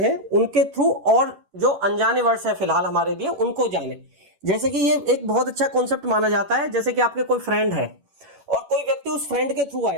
उनके थ्रू और जो अनजाने वर्ड्स है फिलहाल हमारे लिए उनको जाने। जैसे कि ये एक बहुत अच्छा कॉन्सेप्ट माना जाता है। जैसे कि आपके कोई फ्रेंड है और कोई व्यक्ति उस फ्रेंड के थ्रू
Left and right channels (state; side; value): late; left; 11 ms